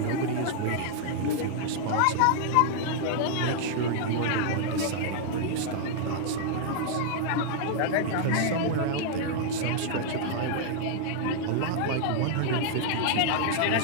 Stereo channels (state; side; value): different; both; correlation 0.00